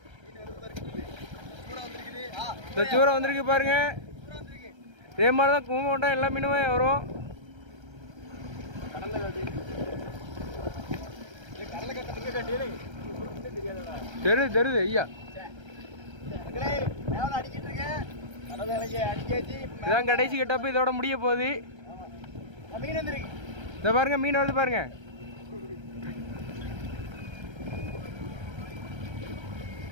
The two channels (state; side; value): late; left; 1.3 ms